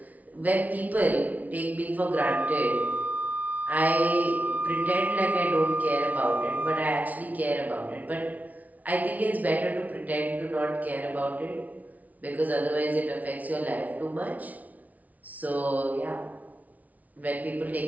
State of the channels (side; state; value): left; late; 0.073 ms